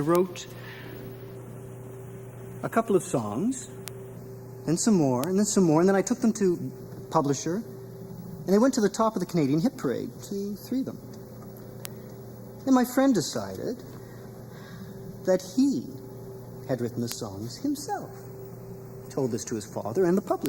a couple of songs, then some more, and then some more, and then I took them to publisher, and they went to the top of the Canadian Hit Parade, 3 of them. And my friend decided that he had written the songs himself. Told this to his father and the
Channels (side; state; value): both; identical; correlation 1.00